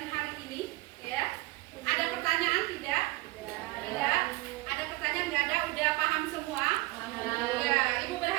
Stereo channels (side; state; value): left; quieter; 21.1 dB